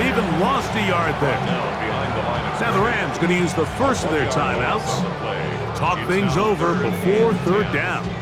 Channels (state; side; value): identical; both; correlation 1.00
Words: lost a yard there. Now the Rams going to use the first of their timeouts. Talk things over before 3rd down.